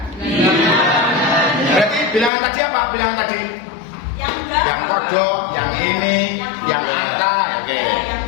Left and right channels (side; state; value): right; drops out; at 2.3 s